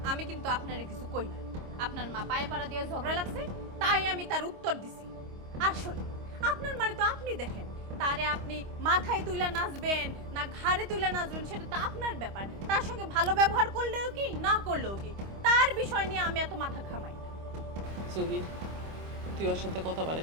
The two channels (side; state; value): left; late; 25 ms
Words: আমি কিন্তু আপনারে কিছু কই না। আপনার মা পায়ে পাড়া দিয়ে ঝগড়া লাগছে, তাই আমি তার উত্তর দিছি। আর শোনেন, আপনার মানে তো আপনি দেখেন, তারে আপনি মাথায় তুলে নাচবেন না ঘাড়ে তুলে নাচবেন সেটা তো আপনার ব্যাপার। তার সঙ্গে ভালো ব্যবহার করলেও কি, না করলেও কি, তার বিষয় নিয়ে আমি এত মাথা ঘামাই না। জহির, তুই ওর সাথে কথা